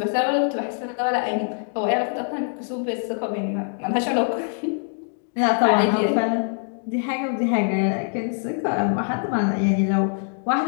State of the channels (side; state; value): right; silent; 57 dB below the other